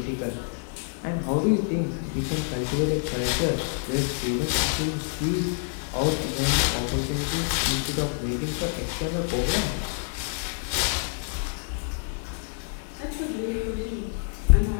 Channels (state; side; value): silent; right; digital silence